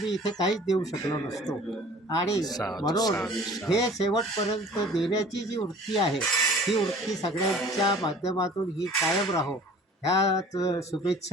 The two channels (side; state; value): both; normal; correlation 0.47